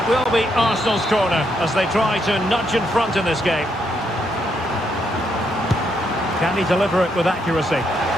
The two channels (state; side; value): normal; both; correlation 0.77